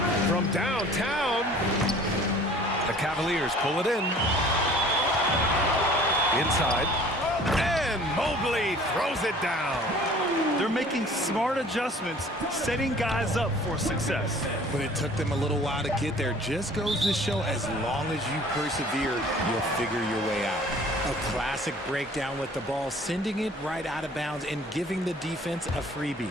From downtown, the Cavaliers pull it in. Inside, and Mobley throws it down. They're making smart adjustments, setting guys up for success. But it took them a little while to get there. Just goes to show, as long as you persevere, you'll figure your way out. A classic breakdown with the ball, sending it right out of bounds and giving the defense a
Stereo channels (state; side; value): normal; both; correlation 0.50